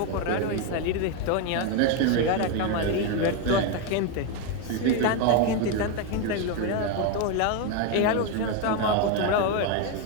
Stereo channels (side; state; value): both; different; correlation 0.02